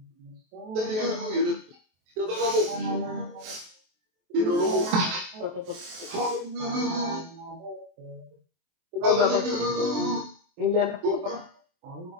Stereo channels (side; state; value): left; late; 23 ms